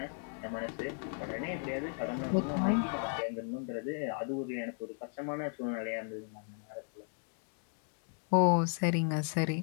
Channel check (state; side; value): silent; right; 54 dB below the other